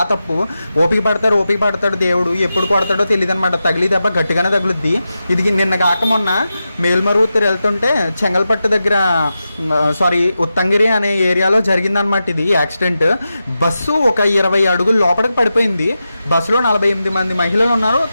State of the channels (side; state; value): both; inverted; correlation -0.91